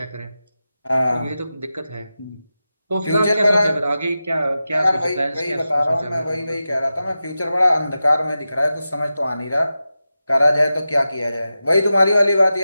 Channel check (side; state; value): both; inverted; correlation -0.92